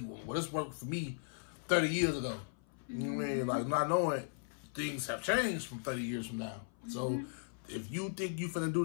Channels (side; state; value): right; silent; 53 dB below the other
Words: well, this worked for me 30 years ago. You know what I mean? Like, not knowing things have changed from 30 years from now. So if you think you finna do